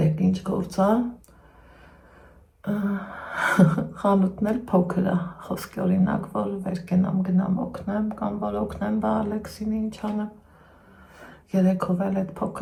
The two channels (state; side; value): identical; both; correlation 1.00